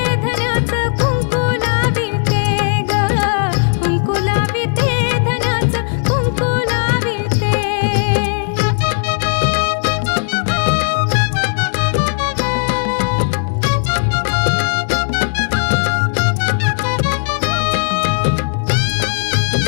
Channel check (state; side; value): silent; right; digital silence